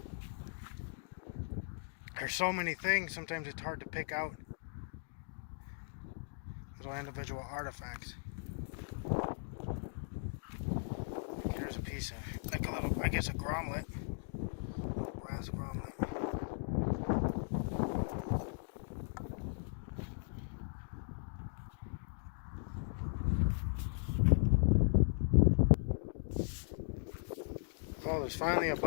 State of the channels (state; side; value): silent; right; digital silence